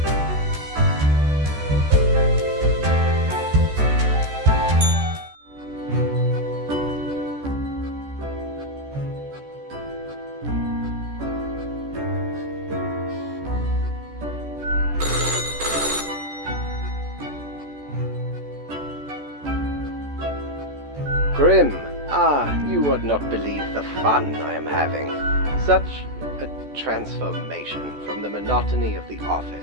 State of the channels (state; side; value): late; left; 14 ms